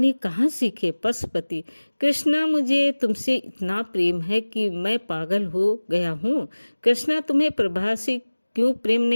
कहाँ सीखे? पशुपति, कृष्णा, मुझे तुमसे इतना प्रेम है कि मैं पागल हो गया हूँ। कृष्णा, तुम्हें प्रभा से क्यों प्रेम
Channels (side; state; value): both; inverted; correlation -1.00